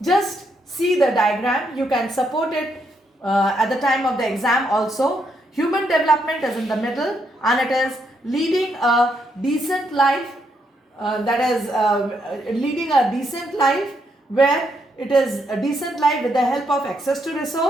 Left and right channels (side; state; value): both; normal; correlation 0.77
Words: Just see the diagram. You can support it at the time of the exam also. Human development is in the middle and it is leading a decent life, leading a decent life where it is a decent life with the help of access to